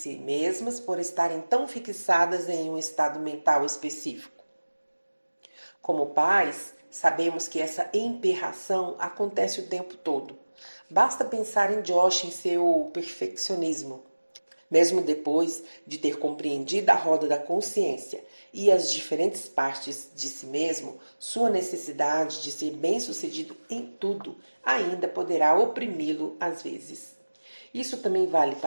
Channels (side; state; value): both; inverted; correlation -1.00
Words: mesmas por estarem tão fixadas em um estado mental específico. Como pais, sabemos que essa emperração acontece o tempo todo. Basta pensar em Josh em seu perfeccionismo. Mesmo depois de ter compreendido a roda da consciência e as diferentes partes de si mesmo, sua necessidade de ser bem-sucedido em tudo ainda poderá oprimi-lo às vezes. Isso também vale